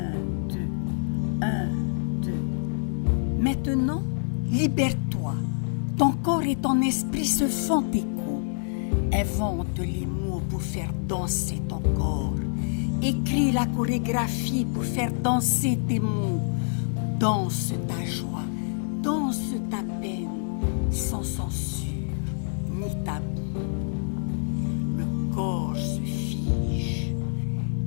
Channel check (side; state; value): right; silent; digital silence